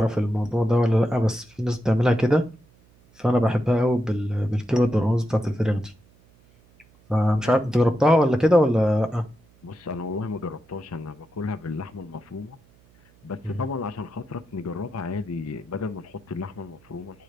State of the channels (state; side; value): noise; right; hum, 30 dB below the sound